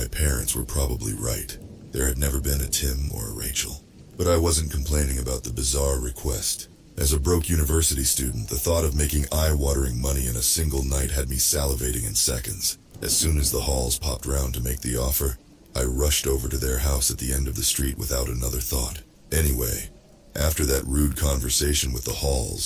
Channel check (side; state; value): both; identical; correlation 1.00